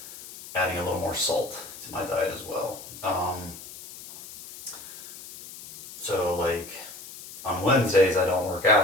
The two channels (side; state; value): left; noise; hiss, 14 dB below the sound